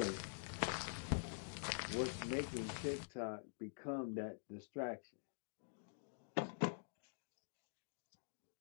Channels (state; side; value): silent; right; digital silence